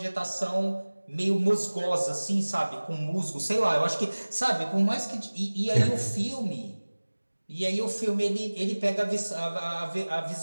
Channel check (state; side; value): inverted; both; correlation -1.00